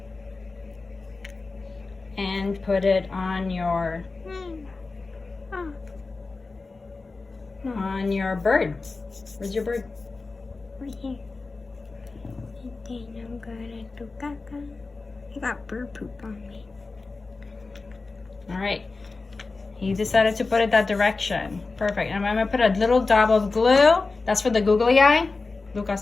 And put it on your bird. Where's your bird? Right here. And then I'm gonna do caca. I got bird poop on me. All right. He decided to put it that direction. Perfect. And I'm gonna put a little dab of glue. That's for the googly eye.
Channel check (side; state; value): right; quieter; 3.8 dB